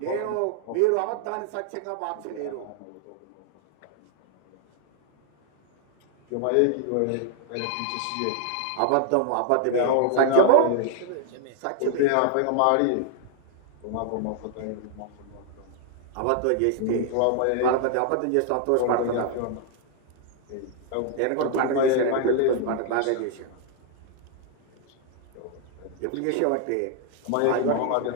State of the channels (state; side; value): different; both; correlation 0.00